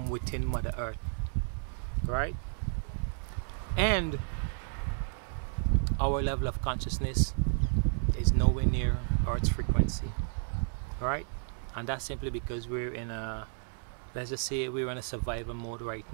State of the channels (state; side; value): silent; left; 56 dB below the other